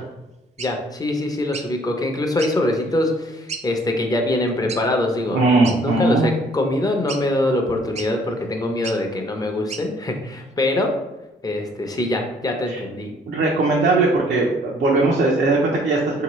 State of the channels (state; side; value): normal; both; correlation 0.60